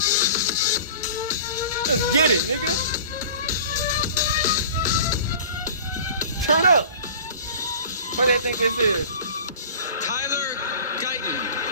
Let's get it, nigga. Turn up. What do you think this is? Tyler Guyton,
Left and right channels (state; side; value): inverted; both; correlation -0.41